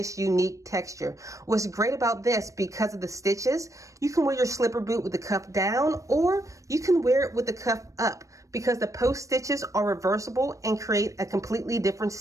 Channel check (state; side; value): late; left; 0.16 ms